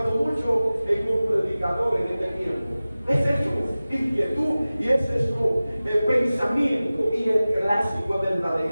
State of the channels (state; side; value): inverted; both; correlation -0.97